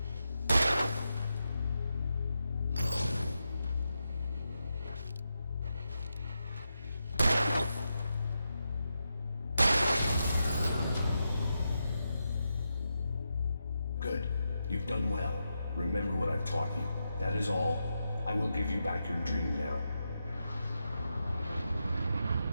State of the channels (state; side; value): inverted; both; correlation -0.87